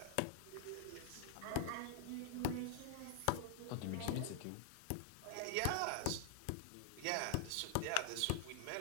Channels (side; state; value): both; different; correlation 0.00